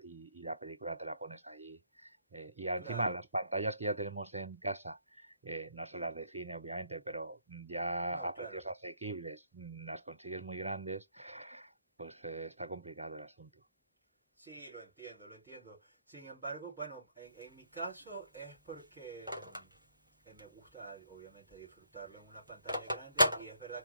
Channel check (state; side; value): inverted; both; correlation -0.69